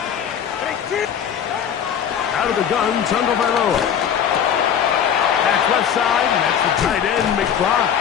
Out of the gun, Tagovailoa. Back left side, and that's the tight end, McBride.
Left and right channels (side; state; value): right; quieter; 8.5 dB